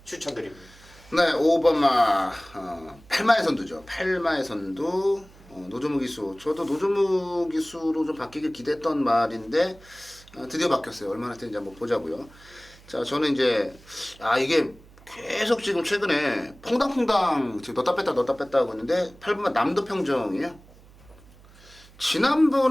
추천드립니다. 네, 5번마 8마의 선두죠. 8마의 선두 노조무 기수. 저도 노조무 기수로 좀 바뀌길 기대했던 말인데 드디어 바뀌었어요. 얼마나 됐는지 한번 보자고요. 자, 저는 이제 이게 계속 지금 최근에 퐁당퐁당 지금 넣었다 뺐다 하고 있는데 8번만 남도평정이에요.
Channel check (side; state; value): right; noise; hum, 24 dB below the sound